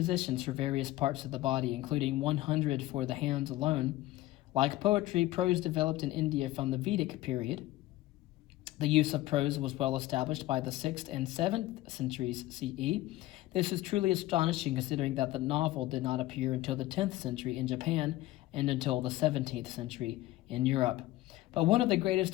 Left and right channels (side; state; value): right; quieter; 16.7 dB